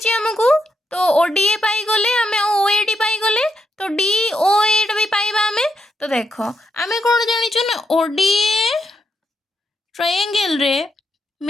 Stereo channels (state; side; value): normal; both; correlation 0.82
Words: हमकु। तो ODA पाई गले आमे OAD पाई गले। तो DOA भी पाइबा आमे। तो देखो आमे कोण जानिछु ना ODA ट्रायंगल रे